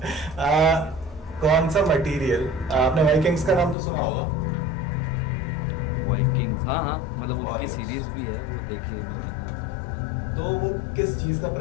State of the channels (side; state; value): right; drops out; at 3.8 s